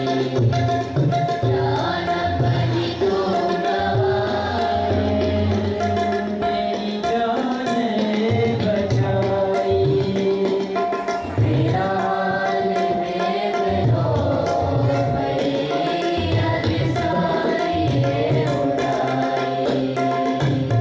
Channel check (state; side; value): identical; both; correlation 1.00